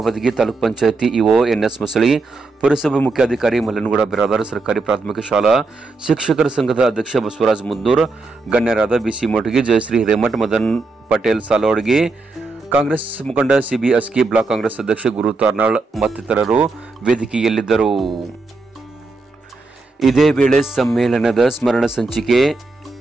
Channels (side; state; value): left; quieter; 3.6 dB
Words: ತಾಲೂಕ್ ಪಂಚಾಯತಿ ಇಒ ಎನ್ಎಸ್ ಮಸಳಿ, ಪುರಸಭೆ ಮುಖ್ಯಾಧಿಕಾರಿ ಮಲ್ಲನಗೌಡ ಬಿರಾದಾರ್, ಸರ್ಕಾರಿ ಪ್ರಾಥಮಿಕ ಶಾಲಾ ಶಿಕ್ಷಕರ ಸಂಘದ ಅಧ್ಯಕ್ಷ ಬಸವರಾಜ್ ಮುದ್ದೂರ್, ಗಣ್ಯರಾದ ಬಿಸಿ ಮೋಟಗಿ, ಜಯಶ್ರೀ ಹಿರೇಮಠ್, ಮದನ್ ಪಟೇಲ್ ಸಾಲೋಡ್ಗಿ, ಕಾಂಗ್ರೆಸ್ ಮುಖಂಡ ಸಿಬಿ ಅಸ್ಕಿ, ಬ್ಲಾಕ್ ಕಾಂಗ್ರೆಸ್ ಅಧ್ಯಕ್ಷ ಗುರು ತಾರ್ನಾಳ್ ಮತ್ತಿತರರು ವೇದಿಕೆಯಲ್ಲಿದ್ದರು. ಇದೇ ವೇಳೆ ಸಮ್ಮೇಳನದ ಸ್ಮರಣ ಸಂಚಿಕೆ